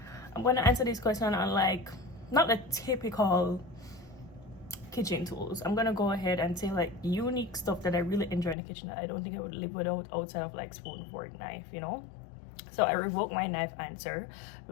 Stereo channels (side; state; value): right; drops out; at 8.6 s